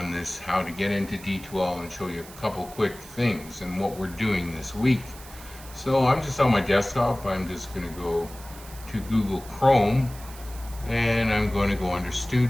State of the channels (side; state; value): right; noise; hiss, 18 dB below the sound